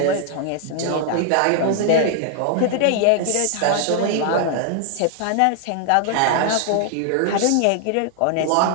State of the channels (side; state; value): both; different; correlation 0.00